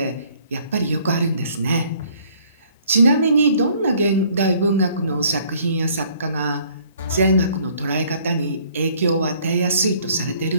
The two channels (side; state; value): both; inverted; correlation -0.60